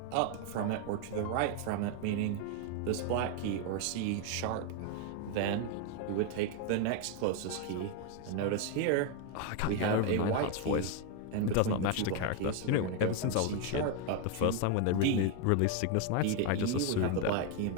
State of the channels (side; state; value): both; different; correlation 0.01